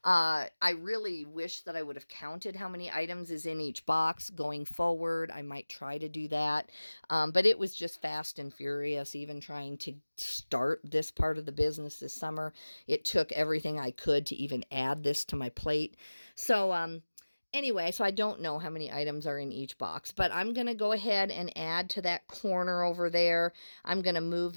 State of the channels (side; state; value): both; inverted; correlation -1.00